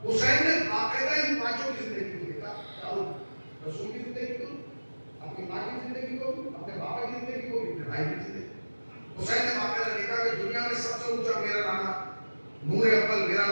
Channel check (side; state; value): both; inverted; correlation -1.00